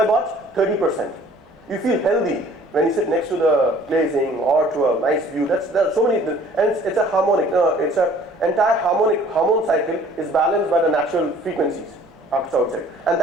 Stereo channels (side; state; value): both; normal; correlation 0.54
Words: what? 30%. You feel healthy when you sit next to the glazing or to a nice view. There are so many, and it's a harmonic. It's a entire hormone cycle is balanced by the natural frequencies outside, and